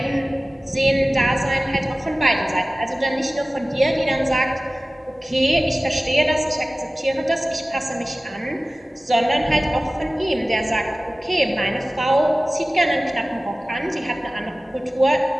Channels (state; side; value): normal; both; correlation 0.97